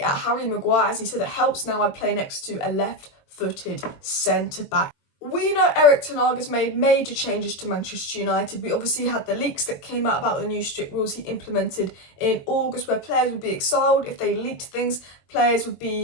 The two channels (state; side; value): late; right; 22 ms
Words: at Harry Maguire, as he said it helps now I play next to a left-footed centre-back. We know Erik Ten Hag has made major changes to Manchester United. We obviously had the leaks that came out about the new strict rules he implemented in August, where players would be exiled if they leaked things, players would